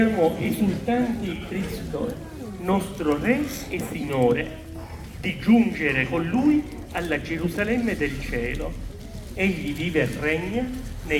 esultanti il Cristo, nostro Re e Signore, di giungere con Lui alla Gerusalemme del cielo. Egli vive e regna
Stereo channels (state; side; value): identical; both; correlation 1.00